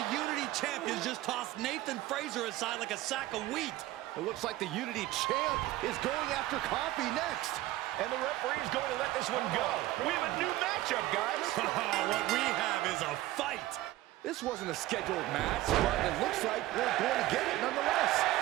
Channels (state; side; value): quieter; left; 16.6 dB